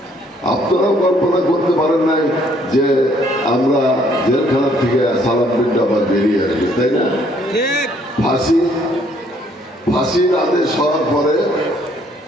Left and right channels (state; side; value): normal; both; correlation 0.64